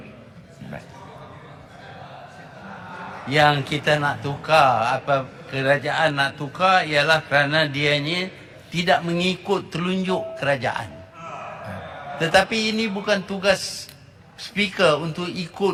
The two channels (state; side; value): identical; both; correlation 1.00